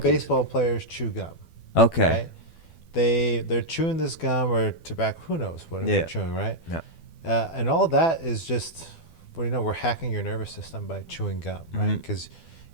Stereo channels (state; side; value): late; right; 12 ms